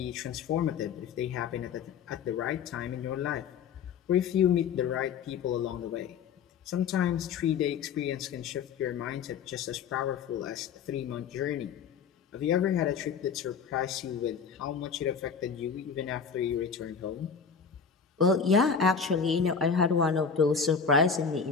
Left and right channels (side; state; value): right; quieter; 6.3 dB